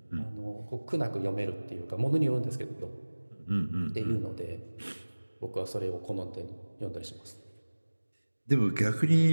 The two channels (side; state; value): both; inverted; correlation -1.00